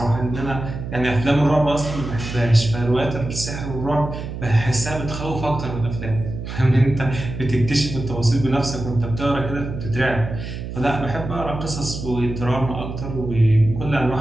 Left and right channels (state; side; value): noise; right; hum, 8 dB below the sound